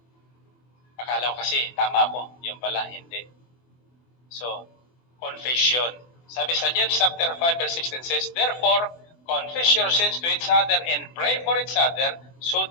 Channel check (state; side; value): late; right; 24 ms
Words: Akala ko kasi, tama ako. Yun pala, hindi. So, confession. Sabi sa James chapter 5 verse 16 says, Therefore, confess your sins to each other and pray for each other so